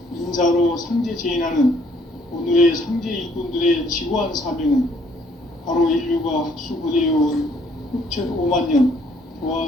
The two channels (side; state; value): both; normal; correlation 0.64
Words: 인사로 상제 제인하는 오늘의 상제 일꾼들의 지구한 사명은 바로 인류가 학수고대해온 후천 5만 년